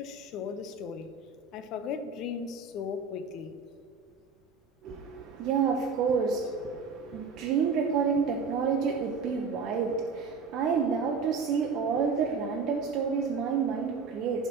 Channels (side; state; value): left; quieter; 4.8 dB